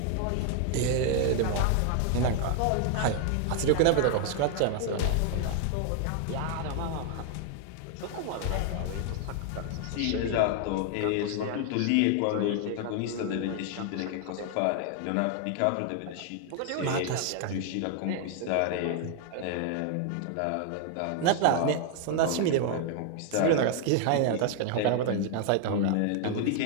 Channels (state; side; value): different; both; correlation 0.00